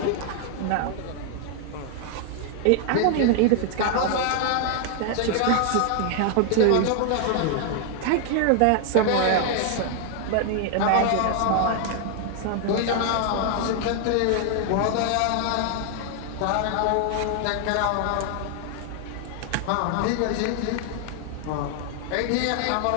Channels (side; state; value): both; different; correlation 0.00